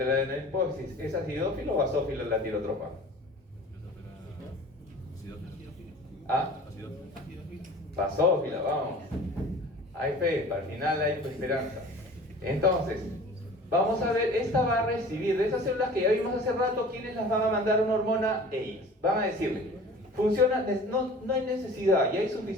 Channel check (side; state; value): both; normal; correlation 0.43